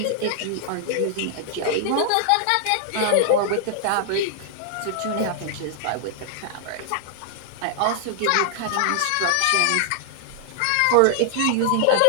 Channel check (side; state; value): both; different; correlation -0.01